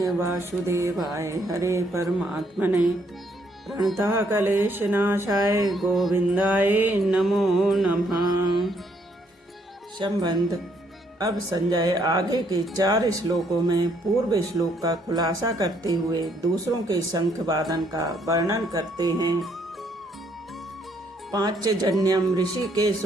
वासुदेवाय हरे परमात्मने प्रणतः क्लेशनाशाय गोविंदाय नमो नमः। संबंध। अब संजय आगे के 4 श्लोकों में पूर्व श्लोक का खुलासा करते हुए दूसरों के शंख वादन का वर्णन करते हैं। पांचजन्यम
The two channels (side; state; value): both; normal; correlation 0.70